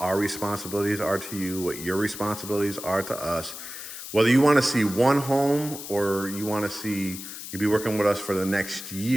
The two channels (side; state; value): left; noise; hiss, 10 dB below the sound